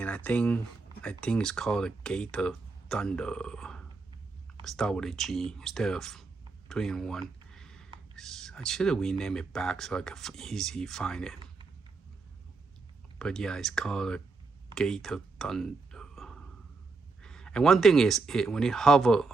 I think it's called a Gate of Thunder. Start with a G instead of 3-in-1. I should have renamed it back so I could easily find it. But yeah, it's called a Gate of Thunder. And one thing is, when it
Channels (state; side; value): quieter; left; 3.9 dB